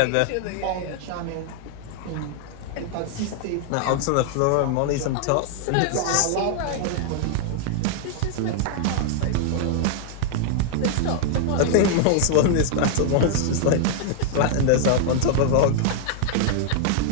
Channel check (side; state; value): both; different; correlation 0.00